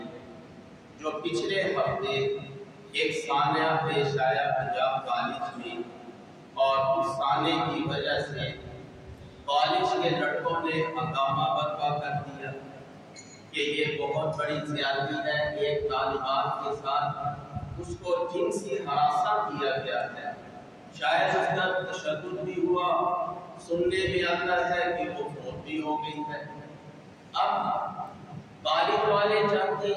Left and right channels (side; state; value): both; identical; correlation 1.00